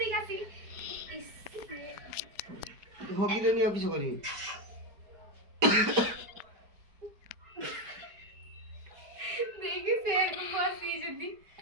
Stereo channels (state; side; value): late; left; 5.2 ms